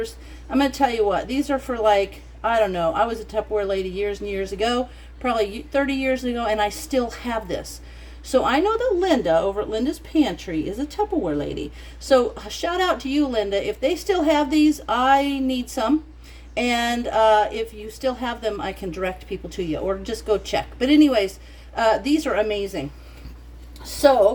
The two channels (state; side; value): identical; both; correlation 1.00